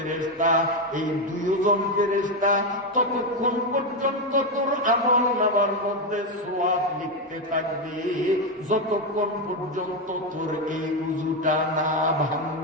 এই দুইজন ফেরেশতা ততক্ষণ পর্যন্ত তোর আমল নামার মধ্যে সওয়াব লিখতে থাকবে যতক্ষণ পর্যন্ত তোর এই উযুটা না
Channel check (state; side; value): normal; both; correlation 0.08